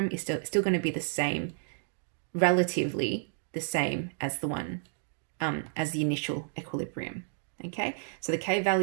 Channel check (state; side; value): silent; left; 57 dB below the other